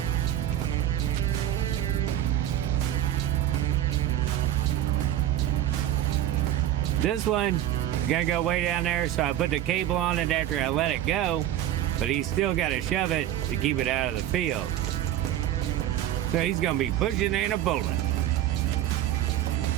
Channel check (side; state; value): left; quieter; 12.1 dB